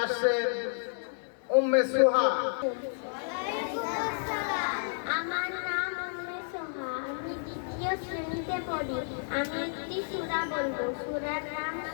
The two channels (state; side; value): silent; right; digital silence